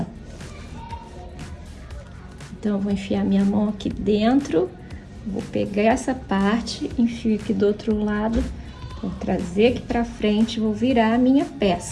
Então, eu vou enfiar minha mão aqui dentro, vou pegar essa parte, enfio aqui do outro lado, vou trazer aqui para frente, vou virar a minha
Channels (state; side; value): identical; both; correlation 1.00